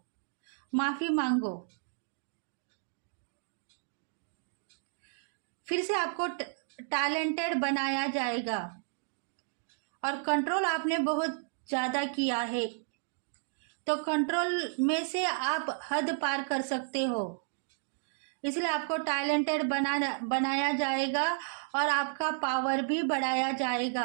माफ़ी मांगो। फिर से आपको टैलेंटेड बनाया जाएगा। और कंट्रोल आपने बहुत ज़्यादा किया है, तो कंट्रोल में से आप हद पार कर सकते हो। इसलिए आपको टैलेंटेड बनाया जाएगा और आपका पावर भी बढ़ाया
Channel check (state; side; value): silent; left; digital silence